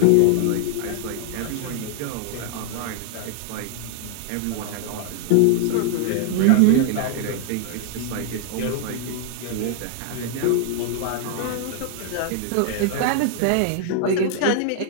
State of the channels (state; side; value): different; both; correlation -0.01